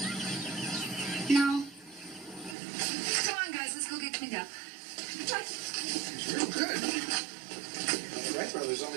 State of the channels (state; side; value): drops out; left; at 2.6 s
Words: No. Come on, guys. Let's go get cleaned up. Real good. The Wright brothers